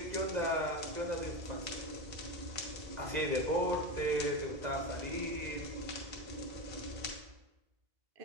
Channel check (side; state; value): left; late; 1.9 ms